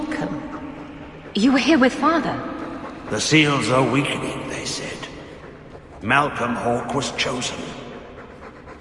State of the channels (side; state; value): both; identical; correlation 1.00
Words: You were here with Father. The seals are weakening, they said. Malcolm Hawk was chosen.